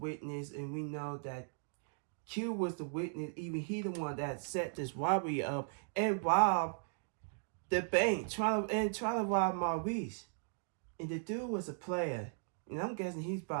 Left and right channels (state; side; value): silent; left; digital silence